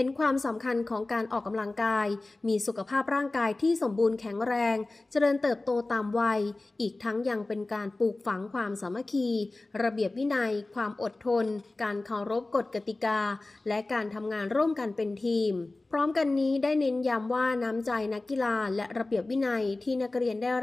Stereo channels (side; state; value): right; quieter; 3.0 dB